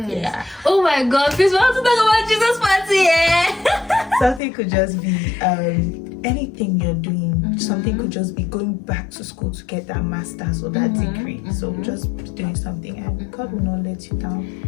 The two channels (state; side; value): drops out; right; at 4.4 s